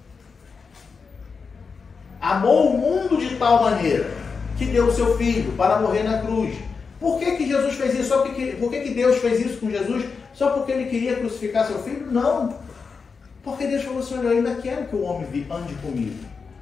Amou o mundo de tal maneira que deu o seu Filho para morrer na cruz. Por que Jesus fez isso? Por que Deus fez isso com Jesus? Só porque Ele queria crucificar seu Filho? Não. Porque Deus falou assim: olha, eu ainda quero que o homem ande comigo.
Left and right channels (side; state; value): right; quieter; 5.2 dB